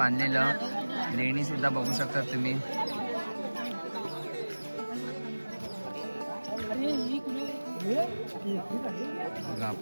लेणी सुद्धा बघू शकता तुम्ही. बघा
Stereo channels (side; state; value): both; inverted; correlation -1.00